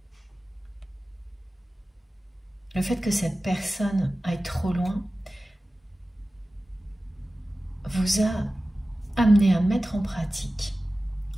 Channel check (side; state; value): both; normal; correlation 0.96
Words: Le fait que cette personne aille trop loin vous a amené à mettre en pratique,